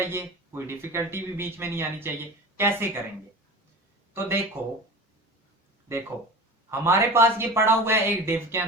कोई डिफिकल्टी भी बीच में नहीं आनी चाहिए। कैसे करेंगे, तो देखो हमारे पास ये पड़ा हुआ है एक डिव के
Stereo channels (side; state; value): both; normal; correlation 0.34